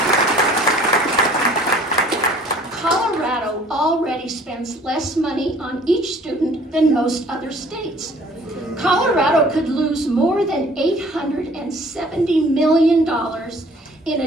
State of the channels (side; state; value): both; normal; correlation 0.54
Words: Colorado already spends less money on each student than most other states. Colorado could lose more than $870 million in